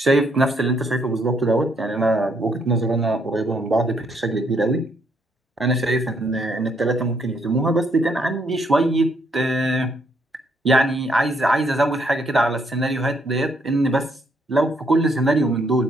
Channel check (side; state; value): both; normal; correlation 0.72